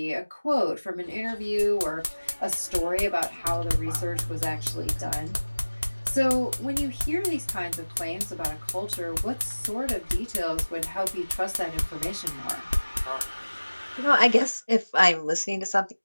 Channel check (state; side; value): inverted; both; correlation -1.00